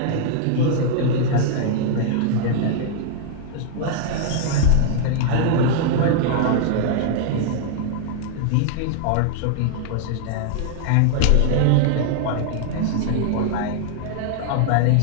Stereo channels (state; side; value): different; both; correlation -0.01